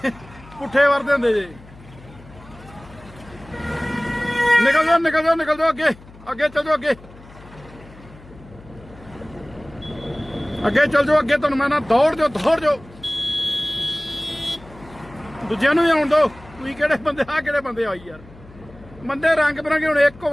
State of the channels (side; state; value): left; noise; hum, 21 dB below the sound